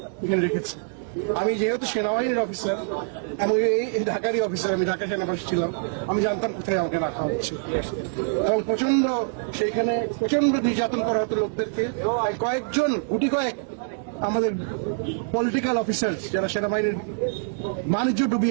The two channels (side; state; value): left; silent; digital silence